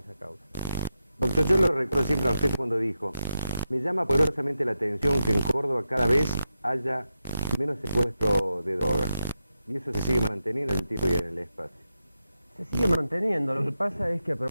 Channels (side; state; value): both; inverted; correlation -0.88